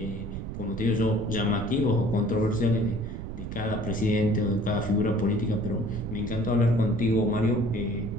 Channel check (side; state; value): right; noise; rumble, 7 dB below the sound